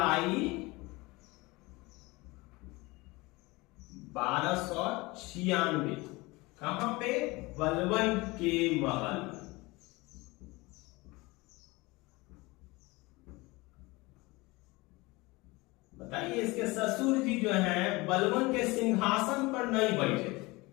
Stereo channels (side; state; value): right; quieter; 23.0 dB